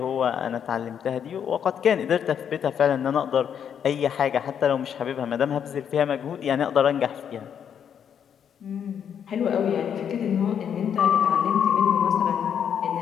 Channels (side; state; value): right; quieter; 8.3 dB